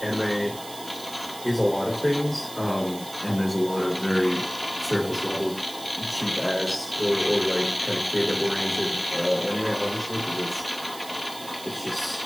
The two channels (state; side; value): noise; right; hiss, 14 dB below the sound